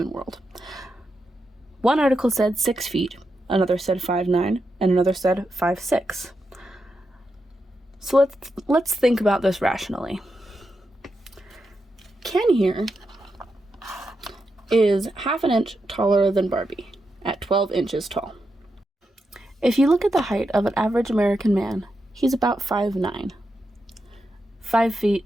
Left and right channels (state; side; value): normal; both; correlation 0.86